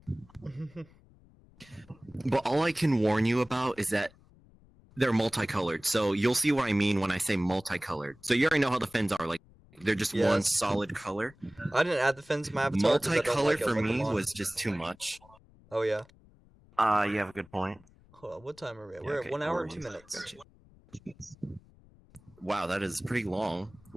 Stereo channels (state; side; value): noise; left; rumble, 27 dB below the sound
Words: But all I can warn you about is that they're multicolored. So you'll see what I mean when I say multicolored. So you already know how the fins are. Like, they're just one Yes. solid color. I didn't add the fins to my avatar because I don't Multicolor like it for with me them on. was just too much. Oh yeah. You have a good point. Hold on, what time are we at? Yeah, We're okay, at 1 hour and no 2 worries. minutes. Wow, that is pretty long.